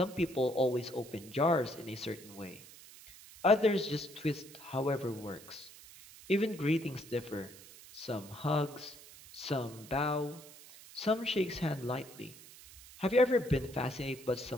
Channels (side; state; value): right; noise; hiss, 19 dB below the sound